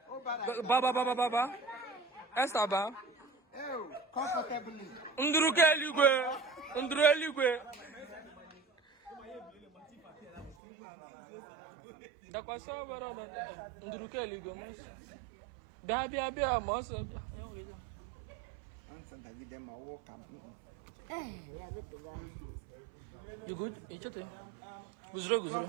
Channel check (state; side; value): drops out; left; at 10.6 s